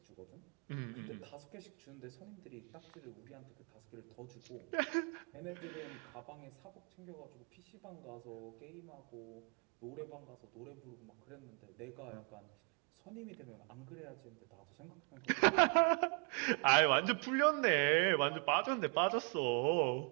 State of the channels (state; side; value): quieter; left; 39.9 dB